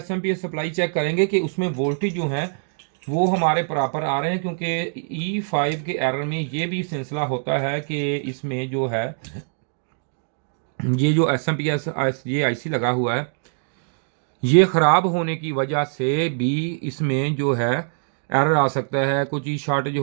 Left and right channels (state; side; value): silent; left; digital silence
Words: सप्लाई चेक करेंगे कि उसमें वोल्टेज जो है वो हमारे प्रॉपर आ रहे हैं। क्योंकि E5 के एरर में ये भी सिलसिला होता है कि इसमें जो है ये जो एसएमपीएस ये आईसी लगा हुआ है, ये ख़राब होने की वजह से भी इसमें जो है एरर आ सकता है। कुछ चीज़ शॉर्टेज